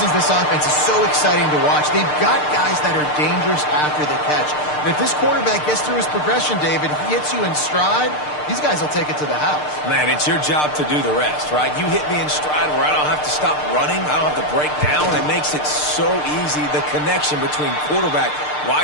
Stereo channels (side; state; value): right; late; 6.6 ms